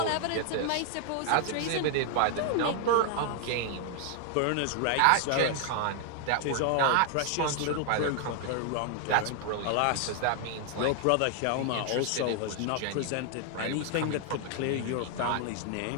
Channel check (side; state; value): both; different; correlation 0.00